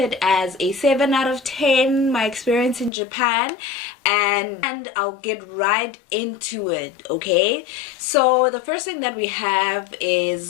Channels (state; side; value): drops out; right; at 2.9 s